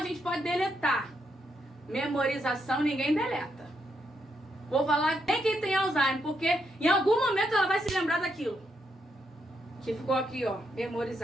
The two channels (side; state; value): both; normal; correlation 0.79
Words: gente pode deletar. Memorização ninguém deleta. Vou falar nem quem tem Alzheimer, porque em algum momento ela vai se lembrar daquilo que ficou aqui, ó,